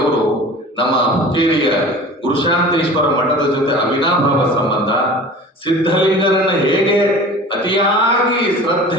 ನಮ್ಮ ಹುಕ್ಕೇರಿಯ ಗುರುಶಾಂತೇಶ್ವರ ಮಠದ ಜೊತೆ ಅವಿನಾಭಾವ ಸಂಬಂಧ, ಸಿದ್ಧಲಿಂಗರನ್ನ ಹೇಗೆ ಅತಿಯಾಗಿ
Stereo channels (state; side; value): normal; both; correlation 0.40